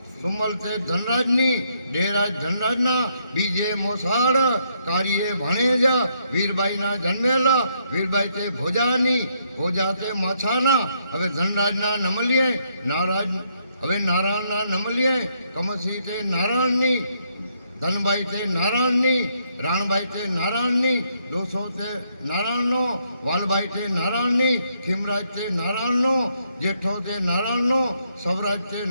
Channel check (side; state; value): both; inverted; correlation -0.75